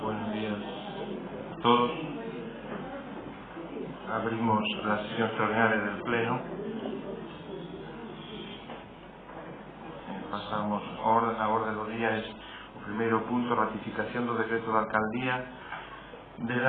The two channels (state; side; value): identical; both; correlation 1.00